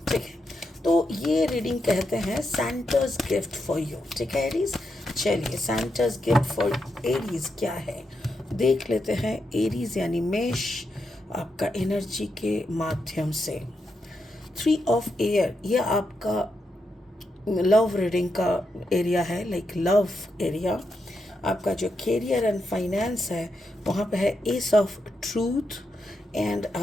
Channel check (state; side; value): normal; both; correlation 0.84